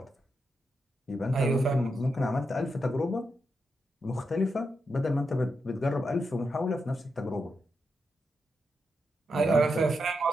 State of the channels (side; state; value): both; normal; correlation 0.85